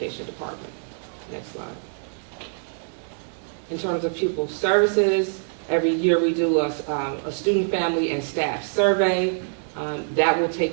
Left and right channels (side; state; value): left; silent; digital silence